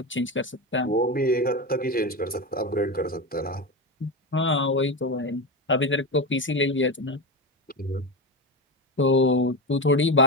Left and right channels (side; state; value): both; normal; correlation 0.19